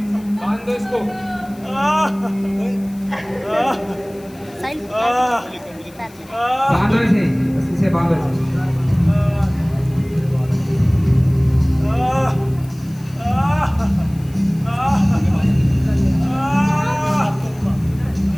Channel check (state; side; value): noise; left; hiss, 25 dB below the sound